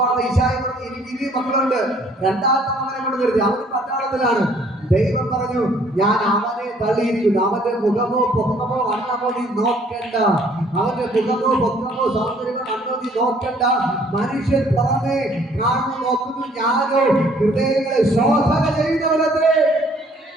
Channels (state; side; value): normal; both; correlation 0.60